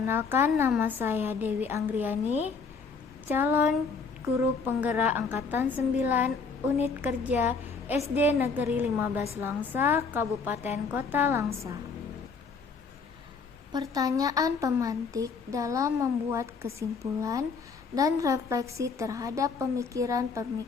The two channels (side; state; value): right; quieter; 5.1 dB